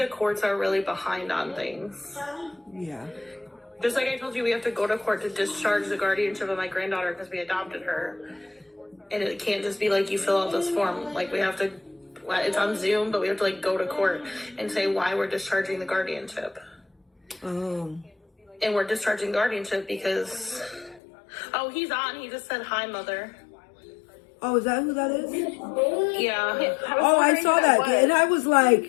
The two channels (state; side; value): drops out; right; at 21.0 s